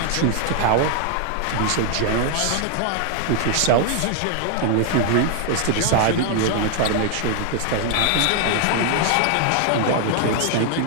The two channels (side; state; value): both; different; correlation 0.00